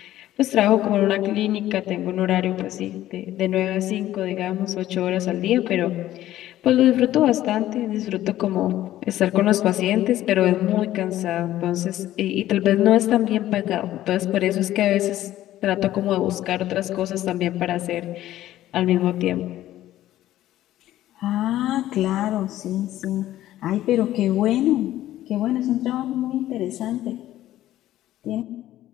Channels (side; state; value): right; quieter; 13.8 dB